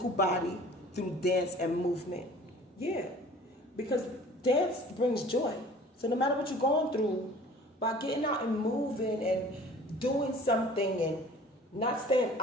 body through dance and movement. Yeah, because dance brings joy. So no matter what you're going through, by getting out and moving and doing something and not staying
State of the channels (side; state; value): both; normal; correlation 0.48